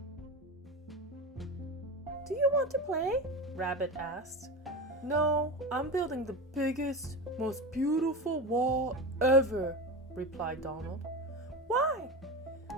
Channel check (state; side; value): normal; both; correlation 0.24